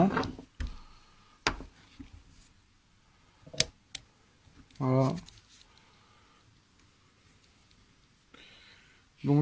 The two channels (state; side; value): identical; both; correlation 1.00